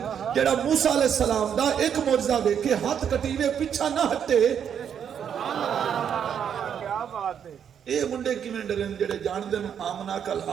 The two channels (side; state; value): left; quieter; 8.3 dB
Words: جڑا موسیٰ علیہ السلام دا ایک معجزہ ویکھ کے ہاتھ کٹیوے پیچھا نہ ہٹے. کیا بات ہے. اے منڈے کیویں ڈرن جڑے جان دن آمنہ کل